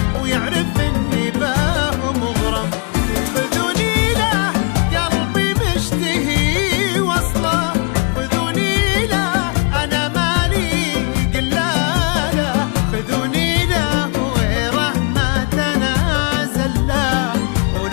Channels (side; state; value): right; quieter; 36.1 dB